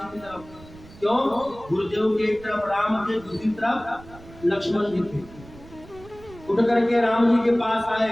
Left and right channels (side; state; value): right; noise; rumble, 20 dB below the sound